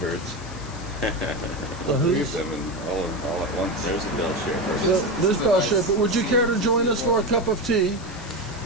The Three who's? of them and all at once. There's a Bele Chere. There's Bele Chere, but would you care to join us for a cup of tea?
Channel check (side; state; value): left; noise; hiss, 18 dB below the sound